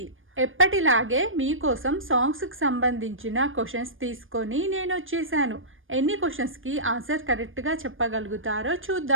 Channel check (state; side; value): late; left; 0.59 ms